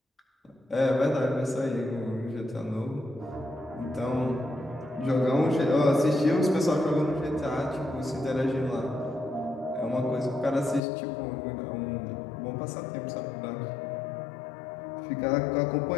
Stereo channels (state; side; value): drops out; right; at 10.8 s